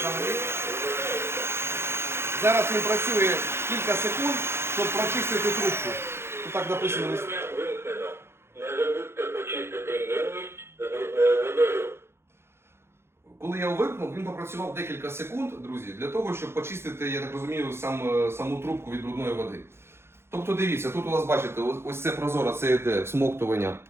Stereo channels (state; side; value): late; left; 0.12 ms